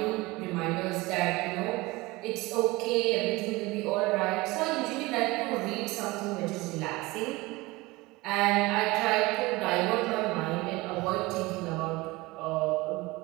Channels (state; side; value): quieter; left; 21.8 dB